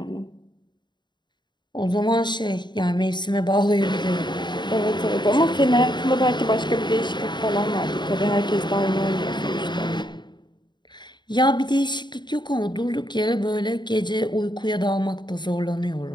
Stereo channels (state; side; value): late; right; 0.22 ms